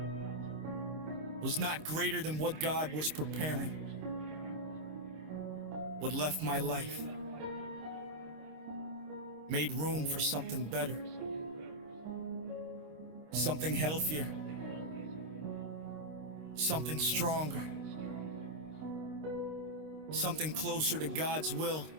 was not greater than what God was preparing. What left my life made room for something better, something healthier, something stronger, something closer to God's will.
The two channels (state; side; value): late; left; 26 ms